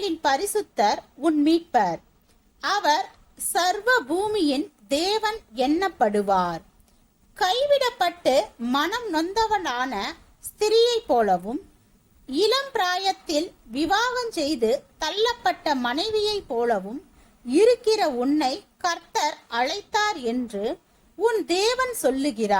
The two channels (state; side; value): identical; both; correlation 1.00